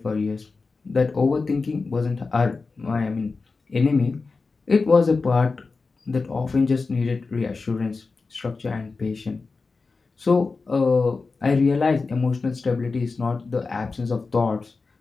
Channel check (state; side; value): quieter; right; 4.2 dB